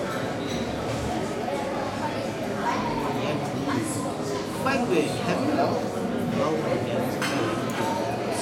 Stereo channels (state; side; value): identical; both; correlation 1.00